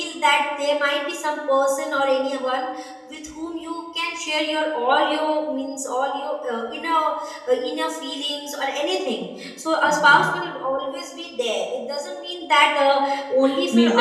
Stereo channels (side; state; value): both; identical; correlation 1.00